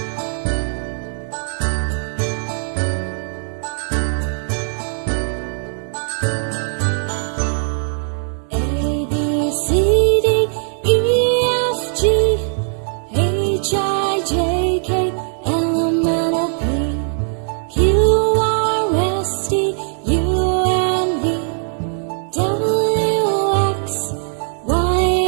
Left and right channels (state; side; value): silent; left; digital silence